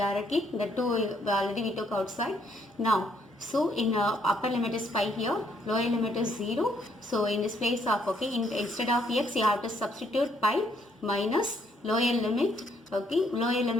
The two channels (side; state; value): both; normal; correlation 0.70